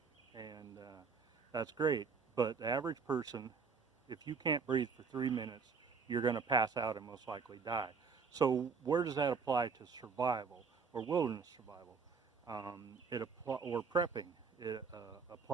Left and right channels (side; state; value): left; quieter; 5.3 dB